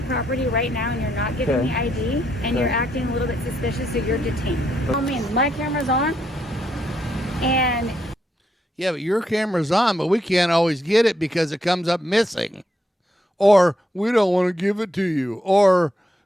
property right now and you're not giving Okay. me ID and you're acting a little bit suspicious, so you're detained. I mean, my camera's on and Yeah, but your camera's on, but we can't always get it because it comes up missing. Or we don't want to give it to you. Or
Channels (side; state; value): both; normal; correlation 0.78